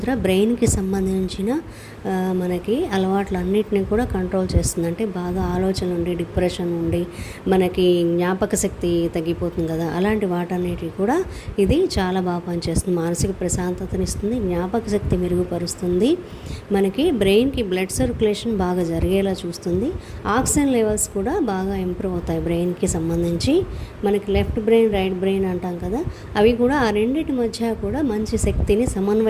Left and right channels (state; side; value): identical; both; correlation 1.00